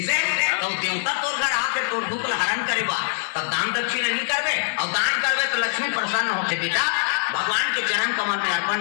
तो देवता तोर घर आके तोर दुख हरण करेगा तब दान दक्षिणा नहीं करबे और दान करबे तो लक्ष्मी प्रसन्न होते बेटा भगवान के चरण कमल में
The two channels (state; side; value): silent; right; 63 dB below the other